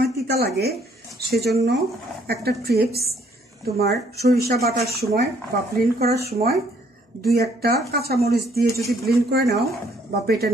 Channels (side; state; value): both; normal; correlation 0.65